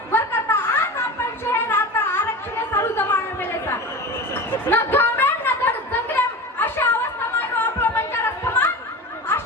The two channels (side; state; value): both; normal; correlation 0.29